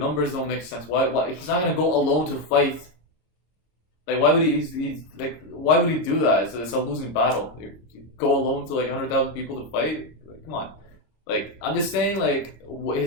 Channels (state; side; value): late; right; 26 ms